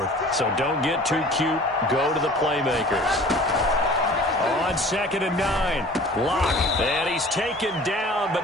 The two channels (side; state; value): both; normal; correlation 0.45